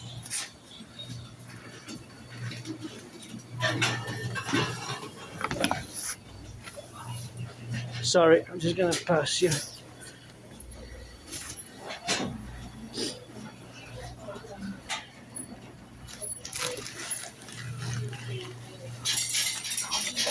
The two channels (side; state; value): both; identical; correlation 1.00